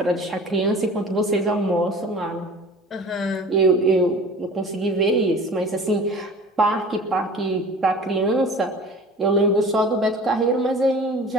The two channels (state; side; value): normal; both; correlation 0.42